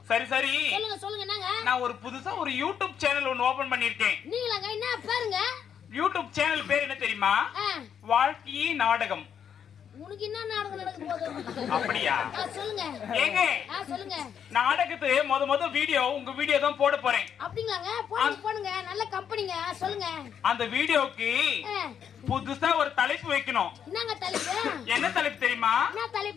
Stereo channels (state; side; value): quieter; right; 8.2 dB